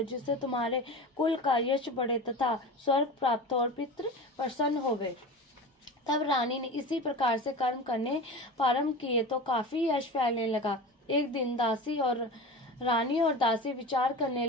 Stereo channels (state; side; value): normal; both; correlation 0.31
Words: जिससे तुम्हारे कुल का यश बढ़े तथा स्वर्ग प्राप्त हो और पितृ प्रसन्न होवे। तब रानी ने इसी प्रकार से कर्म करने प्रारंभ किए तो काफी यश फैलने लगा। एक दिन रानी और दासी विचार करने